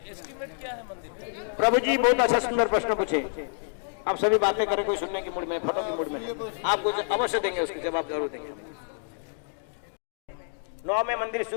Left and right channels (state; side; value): silent; right; 59 dB below the other